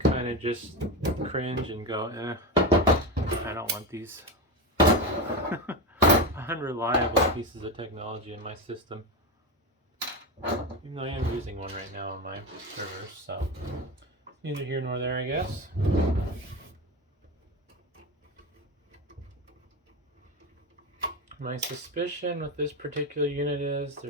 of just cringe and go, I don't want these unreliable pieces of technology in my system. Even though I am using one right now on my servers, so neither here nor there, I guess. My suspicion with this particular unit is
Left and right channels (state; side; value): normal; both; correlation 0.17